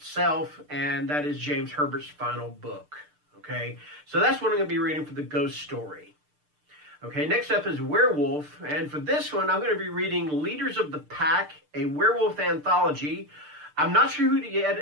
and that is James Herbert's final book. Okay, so that's what I'm going to be reading for the Ghost Story. Okay, next up is Werewolf, and for this one, I'm going to be reading Leaders of the Pack, a werewolf anthology. I'm not sure who the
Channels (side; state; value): left; late; 6.7 ms